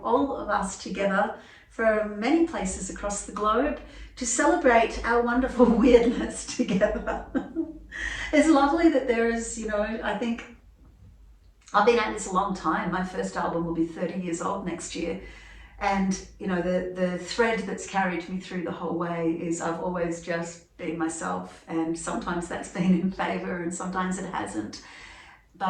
all of us together from many places across the globe to celebrate our wonderful weirdness together. It's lovely that there is, you know, I think I've been at this a long time. My first album will be 30 years old next year. And, you know, the thread that's carried me through the whole way is I've always just been myself, and sometimes that's been in favour and sometimes it hasn't.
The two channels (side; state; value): both; identical; correlation 1.00